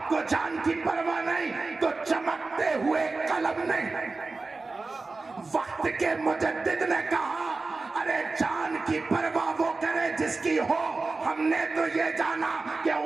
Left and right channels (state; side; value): quieter; left; 3.7 dB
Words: کو جان کی پرواہ نہیں تو چمکتے ہوئے قلم نہیں؟ وقت کے مجدد نے کہا ارے جان کی پرواہ وہ کرے جس کی ہو، ہم نے تو یہ جانا کہ